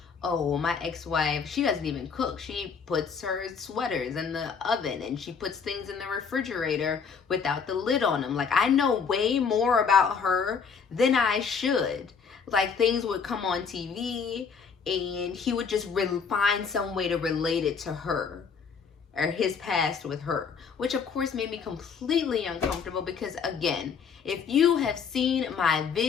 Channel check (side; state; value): right; quieter; 6.1 dB